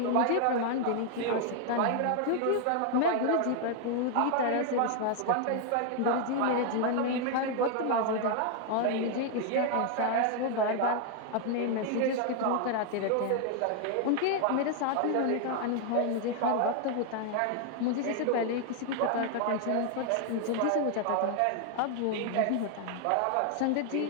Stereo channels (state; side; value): different; both; correlation 0.00